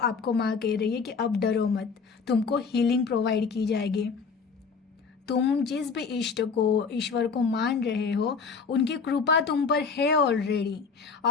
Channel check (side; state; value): right; quieter; 5.3 dB